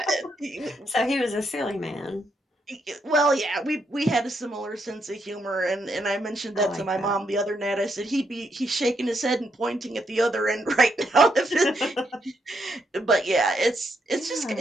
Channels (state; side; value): normal; both; correlation 0.78